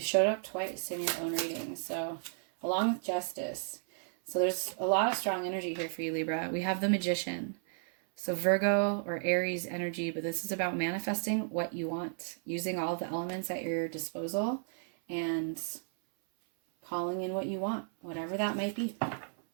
showed up twice in your own reading. So, along with justice. So there's a lot of strong energy here for you, Libra. We have the Magician. So Virgo or Aries energy, but this is about manifesting what you want, using all the elements at your disposal and calling in what you want, whatever that might be.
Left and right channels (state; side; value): silent; left; 55 dB below the other